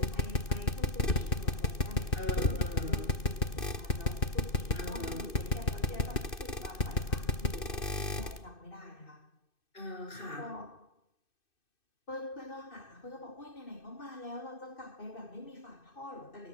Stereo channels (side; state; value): right; late; 2.6 ms